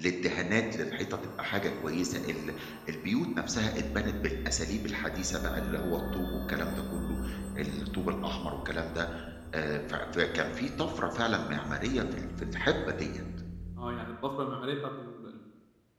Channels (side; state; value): both; identical; correlation 1.00